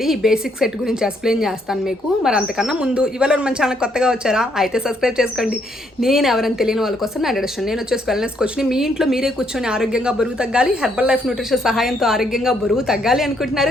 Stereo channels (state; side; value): normal; both; correlation 0.72